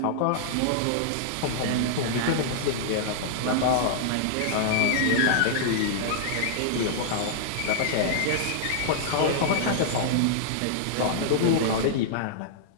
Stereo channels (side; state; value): both; different; correlation -0.01